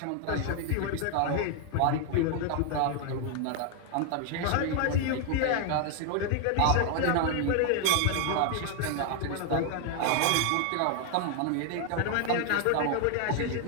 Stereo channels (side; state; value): both; different; correlation 0.00